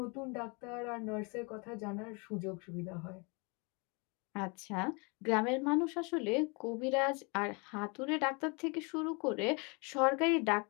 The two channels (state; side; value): quieter; right; 31.4 dB